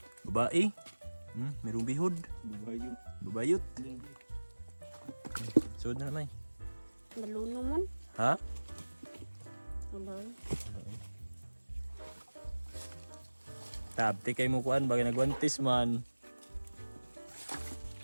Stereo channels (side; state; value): both; inverted; correlation -1.00